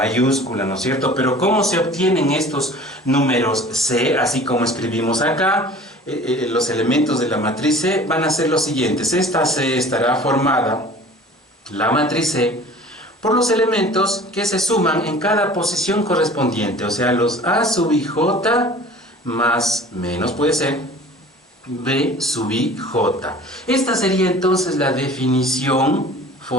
¿no es cierto? Pero ¿cómo se obtienen estos números C? Así como escribimos acá, los elementos de la matriz C van a ser los siguientes. Esta C estará formada, la matriz C, por los elementos que se suman en cada posición correspondiente, o sea, los A sub i j más menos, puede ser B sub i j. Esta sería entonces la definición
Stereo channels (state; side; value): normal; both; correlation 0.45